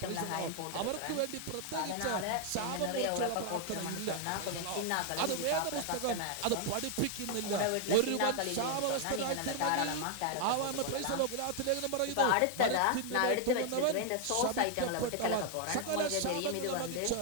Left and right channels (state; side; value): different; both; correlation 0.00